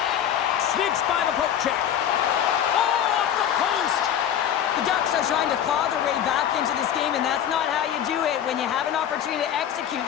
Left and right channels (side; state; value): right; quieter; 9.8 dB